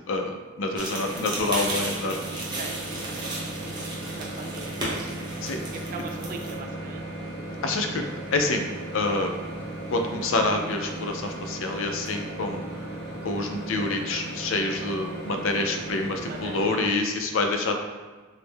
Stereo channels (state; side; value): normal; both; correlation 0.18